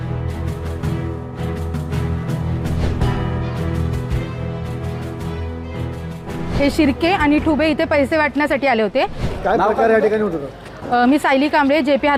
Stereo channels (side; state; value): both; identical; correlation 1.00